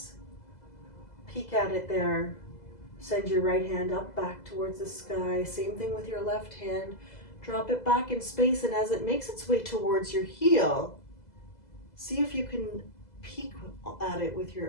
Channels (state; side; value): late; right; 2.0 ms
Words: Peek at it there. Send your right hand up back towards the sky. Same thing with your left hand. Drop it back in space, and as it makes its way towards your heel, see if you can peek at it with